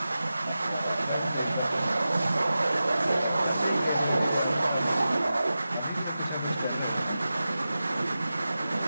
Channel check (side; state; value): both; inverted; correlation -0.93